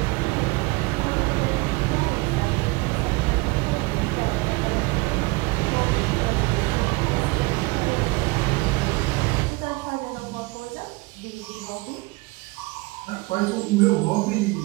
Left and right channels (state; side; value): quieter; left; 24.3 dB